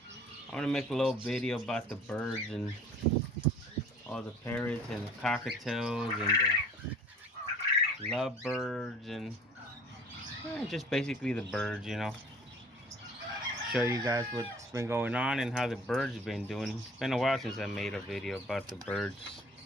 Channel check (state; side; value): normal; both; correlation 0.49